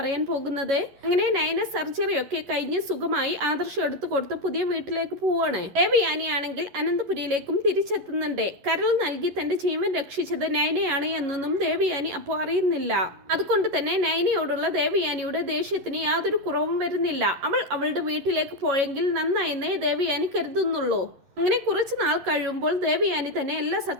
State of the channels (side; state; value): left; late; 11 ms